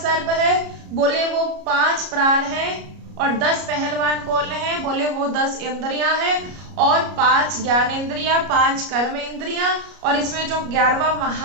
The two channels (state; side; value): late; left; 33 ms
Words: है बोले वो 5 प्राण है और 10 पहलवान कौन है बोले वो 10 इंद्रियां हैं और 5 ज्ञानेंद्रियां, 5 कर्म इंद्रियां, और इसमें जो 11वां